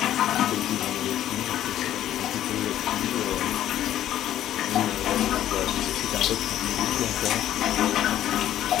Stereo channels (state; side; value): quieter; right; 12.1 dB